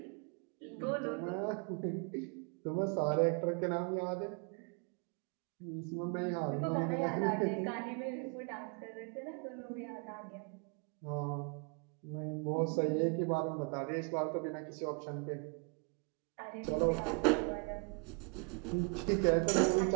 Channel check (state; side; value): quieter; left; 35.4 dB